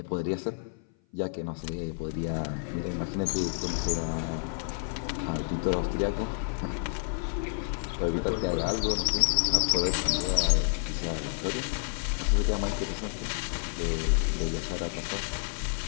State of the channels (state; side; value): silent; right; 56 dB below the other